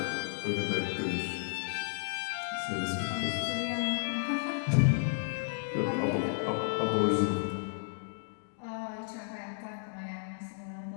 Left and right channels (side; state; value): right; silent; digital silence